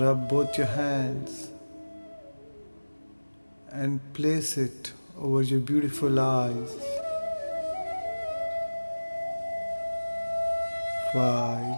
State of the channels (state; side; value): inverted; both; correlation -1.00